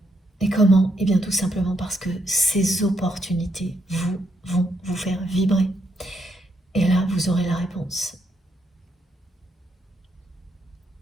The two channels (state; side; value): normal; both; correlation 0.77